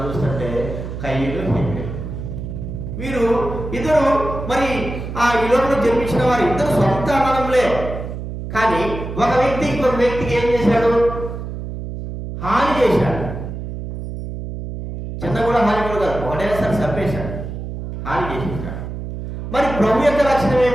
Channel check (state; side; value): noise; right; hum, 7 dB below the sound